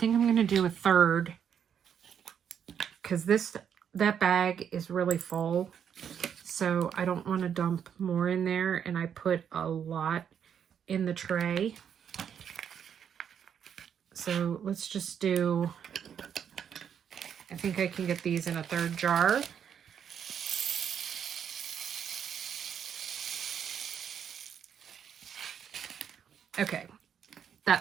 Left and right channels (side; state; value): left; quieter; 8.3 dB